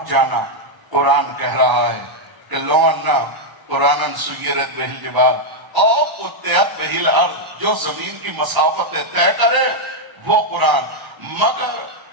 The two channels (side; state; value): left; late; 1.0 ms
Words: جانا۔ قرآن کہہ رہا ہے کہ لو انا قرآن سیرت بہ الجبال اور قطعت بہ الارض، جو زمین کی مسافتیں طے کرے وہ قرآن۔ مگر